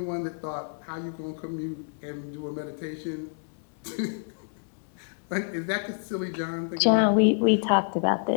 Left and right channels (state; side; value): silent; right; digital silence